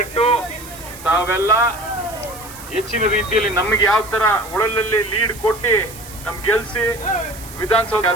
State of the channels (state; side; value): noise; right; hiss, 16 dB below the sound